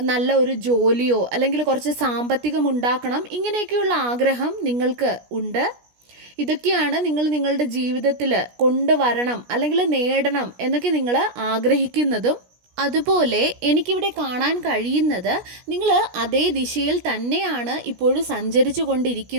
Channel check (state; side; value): late; left; 17 ms